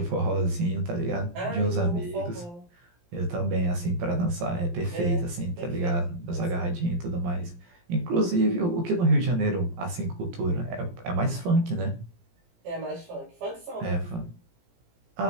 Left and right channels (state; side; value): late; left; 17 ms